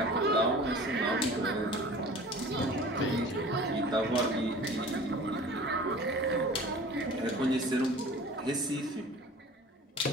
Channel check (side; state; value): both; normal; correlation 0.43